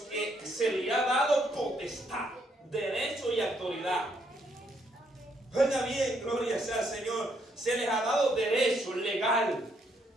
que se le ha dado potestad, derecho y autoridad. Oiga bien, gloria sea al Señor. Se les ha dado derecho legal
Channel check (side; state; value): both; normal; correlation 0.73